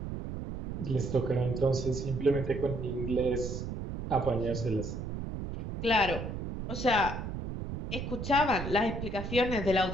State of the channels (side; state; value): right; noise; rumble, 5 dB below the sound